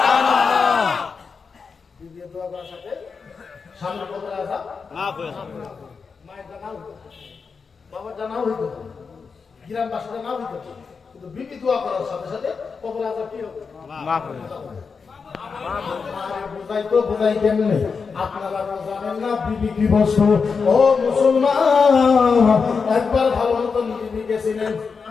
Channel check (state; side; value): quieter; right; 5.3 dB